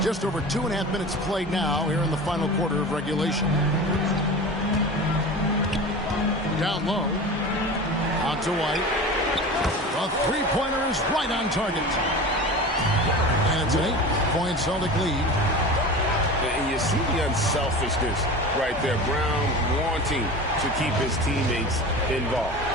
Just over 2.5 minutes played now here in the final quarter of regulation. Down low. Out to White. A three-pointer is right on target. And it's an 8-point Celtic lead. And you see the unselfishness right there. Brown wanting to keep his teammates involved.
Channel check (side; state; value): both; normal; correlation 0.33